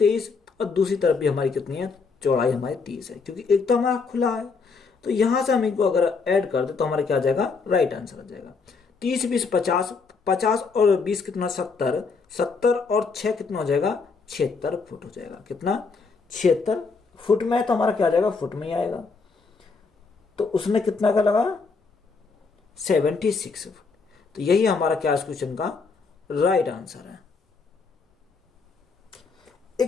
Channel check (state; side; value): quieter; right; 4.7 dB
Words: और दूसरी तरफ भी हमारी कितनी है, चौड़ाई हमारी 30 है, क्योंकि एक तो हमारा खुला है। तो यहां से हम इनको अगर ऐड कर दे तो हमारा क्या आ जाएगा, राइट आंसर आ जाएगा। 30 20 50, 50 और 20 कितना 70, 70 और 6 कितना हो जाएगा 76 फुट हो जाएगा। कितना 76 फुट में, तो हमारा क्या आ जाएगा, फुट में ही आएगा। तो उसने कितना का लगा 76 फुट। तो यही हमारा क्या इस क्वेश्चन का राइट आंसर है।